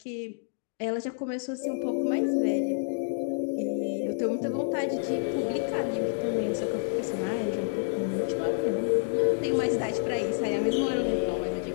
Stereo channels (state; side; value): silent; right; digital silence